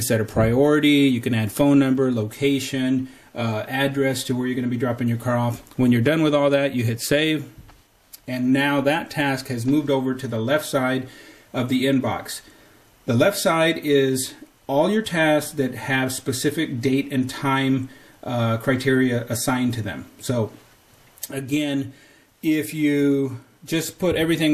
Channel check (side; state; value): both; identical; correlation 1.00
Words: set a priority. You can add phone number, location, address to where you're going to be dropping your car off. When you're done with all that, you hit save, and now that task has moved over to the left side of the inbox. The left side is all your tasks that have specific date and time criteria assigned to them. So again, if you just put